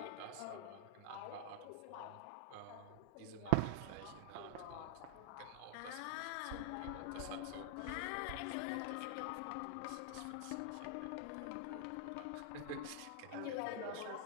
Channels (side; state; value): both; different; correlation 0.00